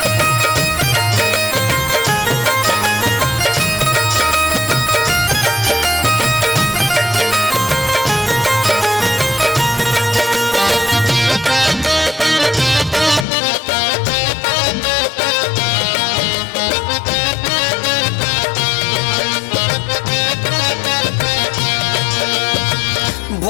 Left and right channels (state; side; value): drops out; right; at 13.2 s